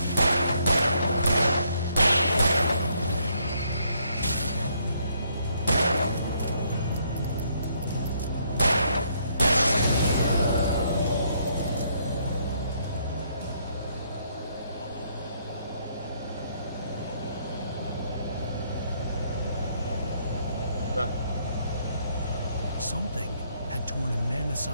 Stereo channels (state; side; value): inverted; both; correlation -0.70